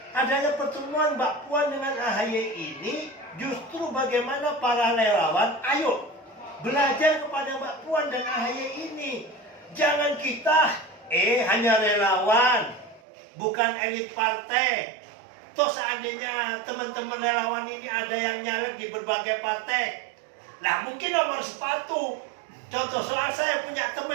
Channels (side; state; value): left; drops out; at 13.0 s